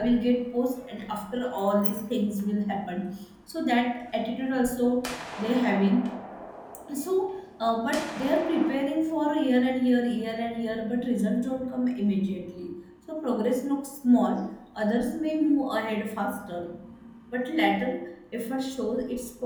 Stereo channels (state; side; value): identical; both; correlation 1.00